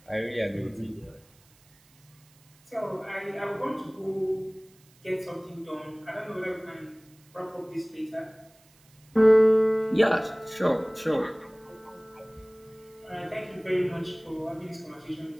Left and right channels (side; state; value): right; noise; hiss, 30 dB below the sound